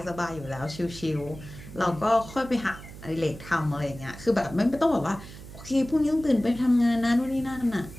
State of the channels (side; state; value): right; noise; hum, 15 dB below the sound